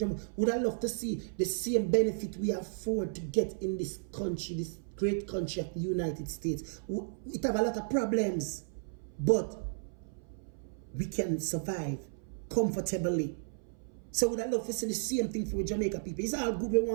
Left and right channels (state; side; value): silent; left; 55 dB below the other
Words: Would I love to see the same benefit we afford to get in this country, this great country of the United States. It have a lot of problems, but we can survive comfortably. So would I love to see the same thing for Jamaica people? It's all good we